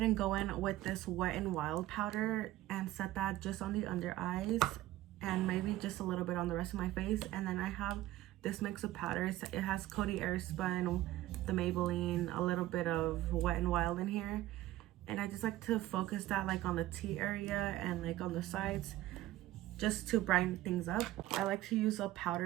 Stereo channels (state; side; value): quieter; left; 15.4 dB